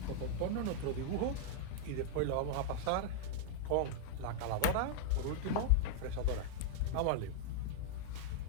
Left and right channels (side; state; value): both; different; correlation -0.01